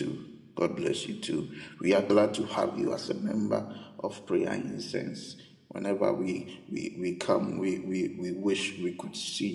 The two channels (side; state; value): both; identical; correlation 1.00